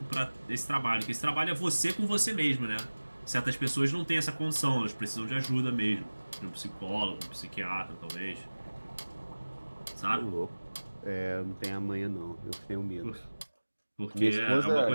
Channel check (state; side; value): inverted; both; correlation -1.00